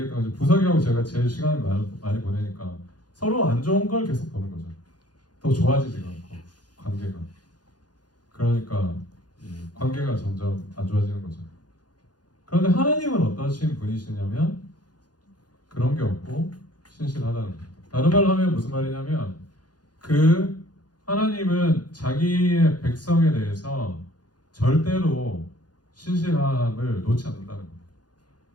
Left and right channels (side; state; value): right; late; 0.69 ms